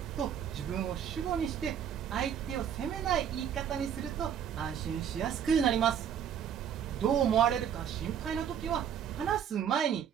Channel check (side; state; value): left; quieter; 8.7 dB